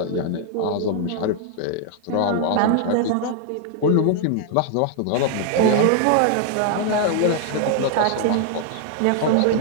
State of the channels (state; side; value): different; both; correlation 0.00